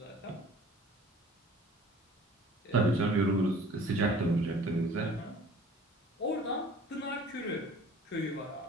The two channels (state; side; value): normal; both; correlation 0.48